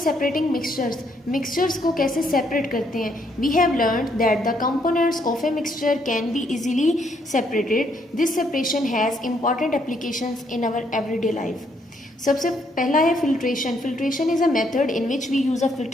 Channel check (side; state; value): both; normal; correlation 0.71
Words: सेपरेटिंग मिक्सचर्स। मिक्सचर्स को कैसे सेपरेट करते हैं? We have learned that the components of a mixture can be easily separated. This separation has important applications in our everyday life. सबसे पहला है filtration. Filtration is a method in which we use a